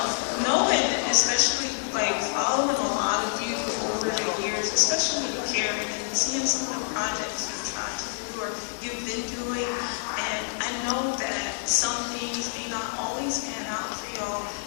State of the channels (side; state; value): right; silent; digital silence